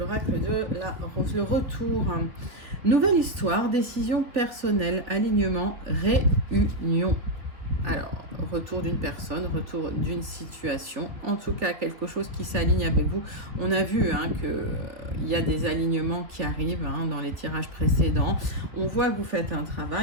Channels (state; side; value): late; left; 3.5 ms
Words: de la rose? Le retour. Nouvelle histoire, décision personnelle, alignement, réunion. Alors, retour d'une personne, retour d'une situation, en tout cas quelque chose qui s'aligne avec vous. On a vu qu'il y a des alignements qui arrivent dans les tirages précédents. On voit que vous faites un